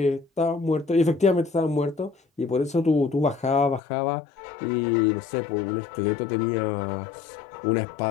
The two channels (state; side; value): drops out; right; at 3.8 s